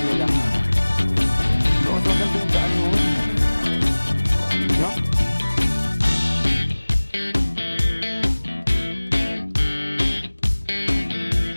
nila. So, mas maganda yung daan mo. No?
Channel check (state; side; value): inverted; both; correlation -1.00